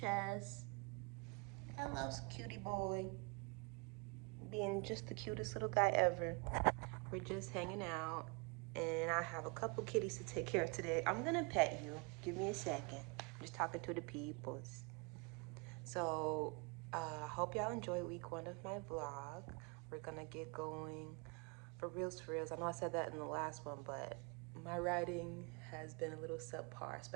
Hello, cutie boy. Being just the cutest little guy ever. We're just hanging out, and I have a couple kitties to take care of today. I'm gonna pet you. Give me a second. I'm just talking to the peoples. So, I hope y'all enjoy week 1 of my vlog. We're gonna get going for reals, for reals. I know I said that in the last one, but my writing has been a little subpar,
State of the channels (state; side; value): quieter; left; 31.1 dB